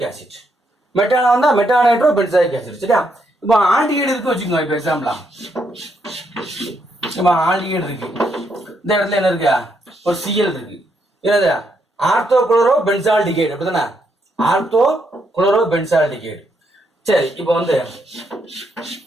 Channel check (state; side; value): normal; both; correlation 0.77